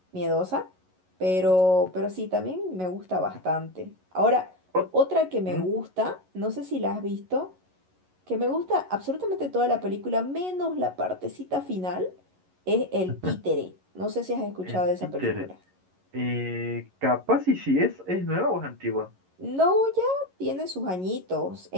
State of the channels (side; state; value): left; late; 11 ms